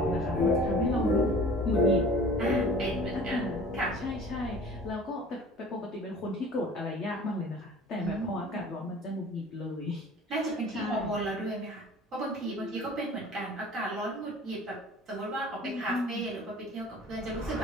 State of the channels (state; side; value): normal; both; correlation 0.45